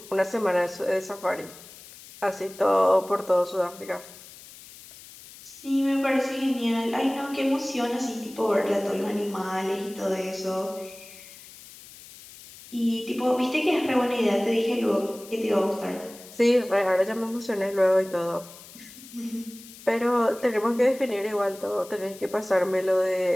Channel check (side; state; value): left; noise; hiss, 19 dB below the sound